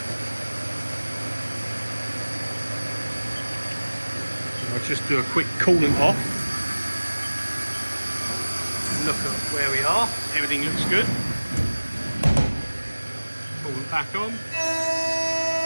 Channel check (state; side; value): inverted; both; correlation -1.00